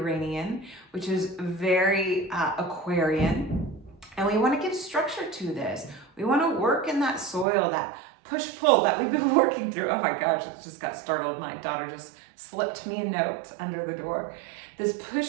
which is very Aquarian. And we want to give structure to this. We want to work in that soil, that push-pull that we've been working through. Oh my gosh, it just got startled. My daughter just slipped me a note under the door. This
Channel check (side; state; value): left; drops out; at 7.5 s